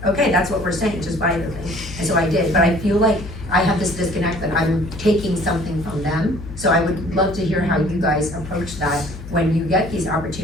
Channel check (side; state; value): left; noise; hum, 12 dB below the sound